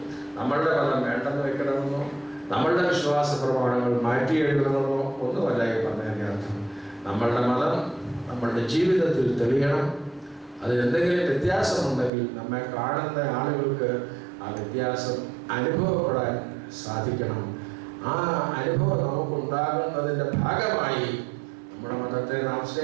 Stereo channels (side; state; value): left; drops out; at 12.1 s